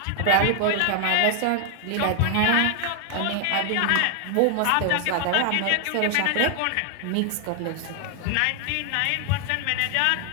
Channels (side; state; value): both; different; correlation 0.00